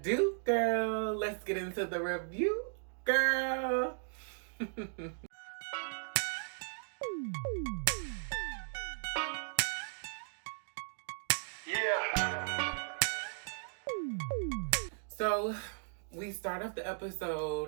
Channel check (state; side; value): silent; left; digital silence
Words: girl, let's get into the review, girl. Yeah. So we start off the